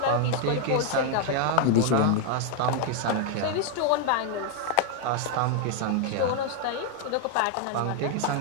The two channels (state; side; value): different; both; correlation 0.01